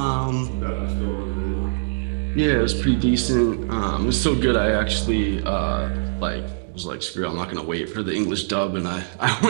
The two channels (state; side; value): silent; left; 64 dB below the other